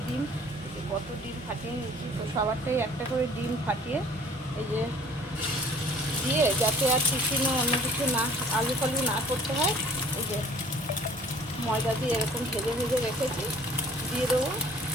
ডিম, কত ডিম ফাটিয়ে নিয়েছি। তো সবারটাই একটা করে ডিম ফাটিয়ে এই যে দিয়ে, যাতে আর টিফিনে অন্য কিছু না, আলু ফালু না করতে হয়, এই যে ময়দা দিয়ে এরকম ভেজে ভেজে রেখেছি, দিয়ে দেবো।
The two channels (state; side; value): normal; both; correlation 0.52